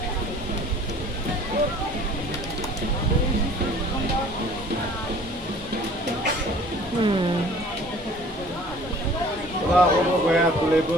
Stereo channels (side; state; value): both; normal; correlation 0.50